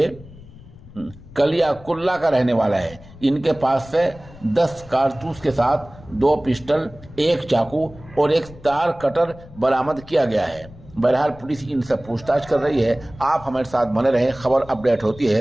کلیا کلا کا رہنے والا ہے۔ ان کے پاس سے 10 کارتوس کے ساتھ 2 پسٹل، 1 چاقو اور 1 تار کٹر برآمد کیا گیا ہے۔ بہرحال پولیس ان سے پوچھ تاچھ کر رہی ہے۔ آپ ہمارے ساتھ بنے رہیں، خبر اپڈیٹ ہوتی ہے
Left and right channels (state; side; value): noise; left; rumble, 20 dB below the sound